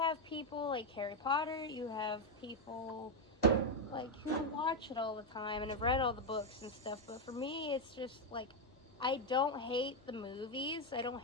people like Harry Potter, you have people... like, who watch it all the time and have read all the books and stuff, but for me, it's just, like, I don't hate the movies, I don't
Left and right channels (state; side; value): normal; both; correlation 0.03